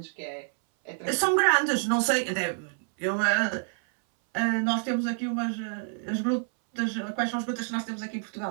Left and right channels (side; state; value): left; silent; 59 dB below the other